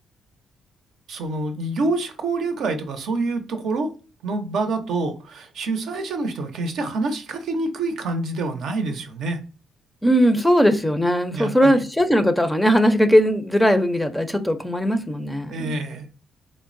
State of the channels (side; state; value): both; normal; correlation 0.85